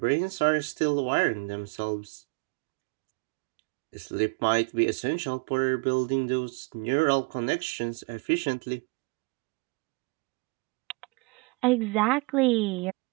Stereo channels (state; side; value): quieter; left; 28.8 dB